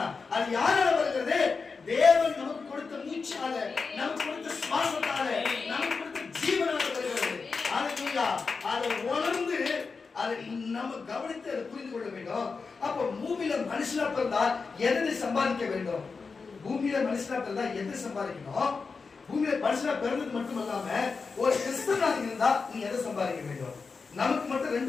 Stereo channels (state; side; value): quieter; right; 4.7 dB